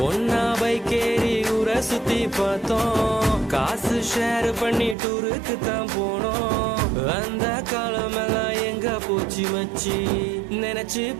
ஒன்னா பைக்கேறி ஊரை சுத்தி பார்த்தோம், காசு ஷேர் பண்ணி டூருக்கு தான் போனோம். அந்த காலமெல்லாம் எங்க போச்சு மச்சி, நினைச்சு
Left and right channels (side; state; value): left; drops out; at 5.0 s